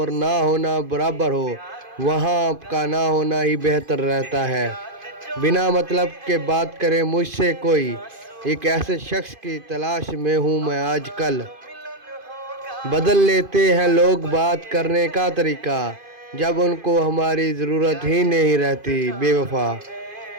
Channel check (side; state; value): left; late; 2.5 ms